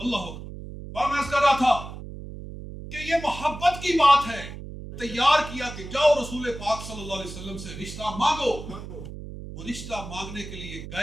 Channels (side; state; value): right; noise; hum, 11 dB below the sound